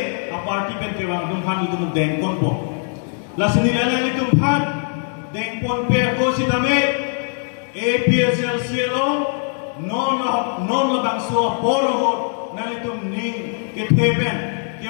a party pen kewa tum itu dengkon po la senilala ni tum dengkon pe ko sitame APSL cielo non labang so poro nali tum ning ke tepen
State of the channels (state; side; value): silent; right; 56 dB below the other